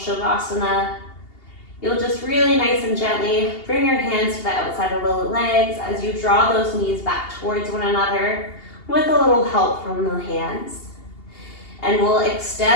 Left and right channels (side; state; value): right; late; 2.8 ms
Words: you'll just really nice and gently bring your hands to the outside of the legs as you draw those knees back towards one another with a little help from the hands. And we'll